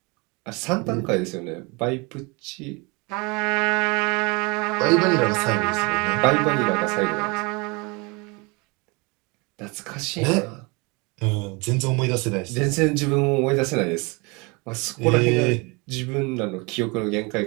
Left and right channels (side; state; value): left; quieter; 28.3 dB